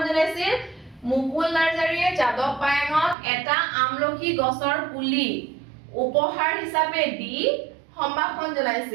মুকুল নাৰ্জাৰীয়ে যাদৱ পায়েঙক এটা আমলখি গছৰ পুলি উপহাৰ হিচাপে দি সম্ভাষণ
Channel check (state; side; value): drops out; left; at 3.2 s